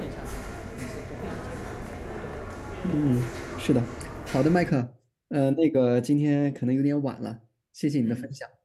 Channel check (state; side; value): identical; both; correlation 1.00